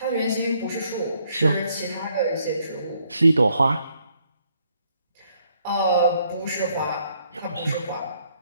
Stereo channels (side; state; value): both; inverted; correlation -0.70